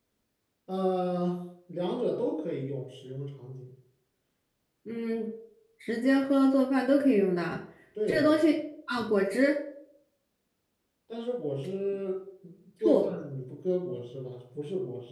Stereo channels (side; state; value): both; identical; correlation 1.00